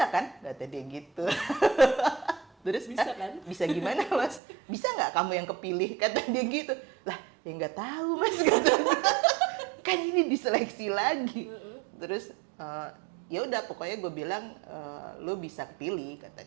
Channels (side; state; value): left; drops out; at 4.4 s